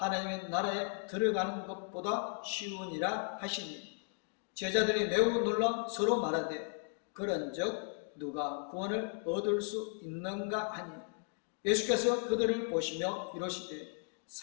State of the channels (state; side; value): silent; right; 54 dB below the other